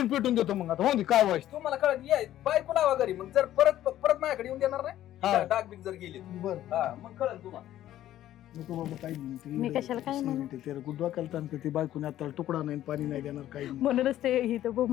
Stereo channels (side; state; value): right; quieter; 12.9 dB